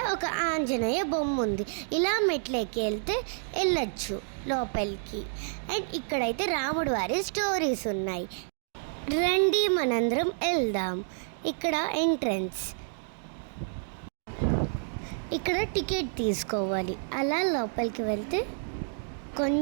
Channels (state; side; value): silent; left; digital silence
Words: ఒక ఆంజనేయ బొమ్మ ఉంది. ఇలా మెట్లెక్కి వెళ్తే వెళ్ళొచ్చు లోపలికి. అండ్ ఇక్కడైతే రాముడు వారి స్టోరీస్ ఉన్నాయి. రండి మనందరం వెళ్దాం. ఇక్కడ ఎంట్రన్స్, ఇక్కడ టికెట్ తీసుకోవాలి. అలా లోపలికి వెళ్తే